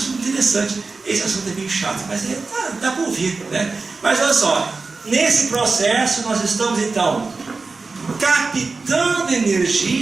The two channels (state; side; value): quieter; left; 4.1 dB